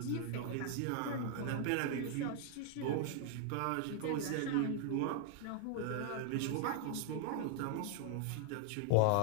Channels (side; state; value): both; different; correlation 0.00